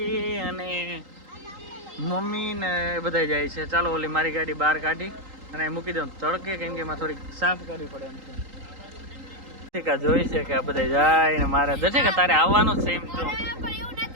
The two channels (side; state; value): left; late; 3.8 ms